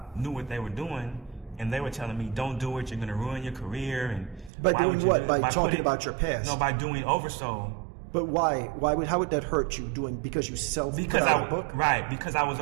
knew what they were doing, and they were telling me, don't do it, you're going to ruin your career. And by doing what? By talking about your past? No, by doing oversold. But why? How would that hurt you? Because you put out a book? Right, because I was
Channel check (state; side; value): drops out; left; at 4.5 s